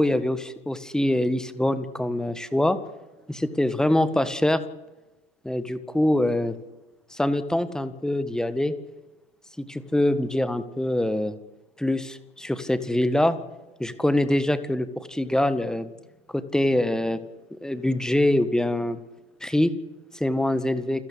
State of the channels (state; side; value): normal; both; correlation 0.93